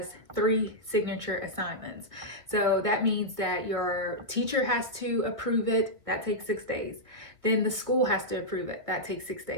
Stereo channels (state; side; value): late; left; 1.4 ms